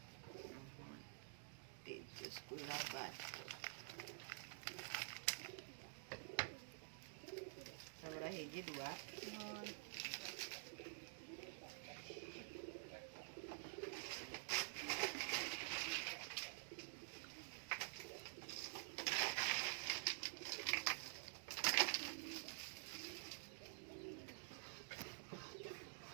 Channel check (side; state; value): left; silent; digital silence